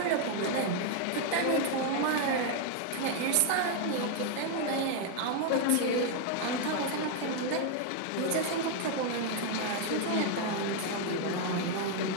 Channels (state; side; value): different; both; correlation 0.00